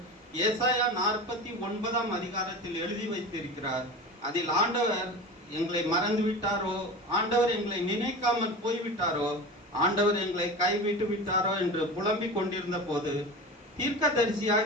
ஏசாயா 49 அதிகாரத்தில் எழுதி வைத்திருக்கிறார். அதில் ஆண்டவர் எங்களை மறந்து விட்டாரோ, ஆண்டவர் எங்களை நினைக்காமல் போய்விட்டாரோ, ஆண்டவர் எங்களை கைவிட்டு விட்டாரோ என்று புலம்பிக் கொண்டிருந்த போது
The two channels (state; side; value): normal; both; correlation 0.31